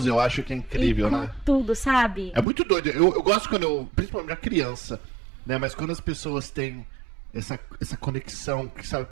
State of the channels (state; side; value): drops out; left; at 2.5 s